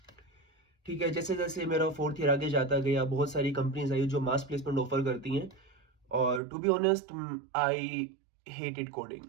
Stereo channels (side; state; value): left; drops out; at 6.4 s